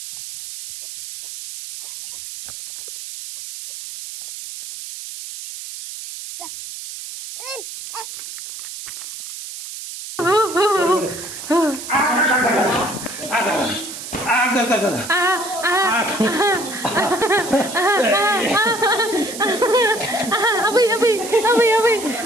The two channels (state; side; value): noise; right; hiss, 10 dB below the sound